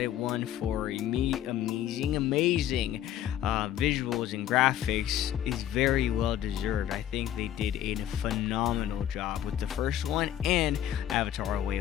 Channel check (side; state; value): right; quieter; 11.4 dB